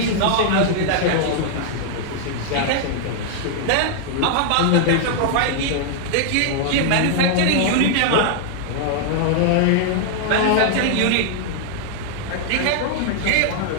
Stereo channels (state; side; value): different; both; correlation 0.00